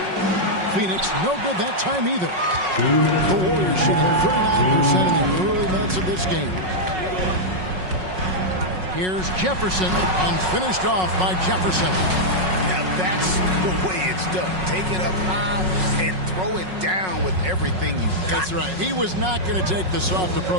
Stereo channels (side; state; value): left; late; 5.4 ms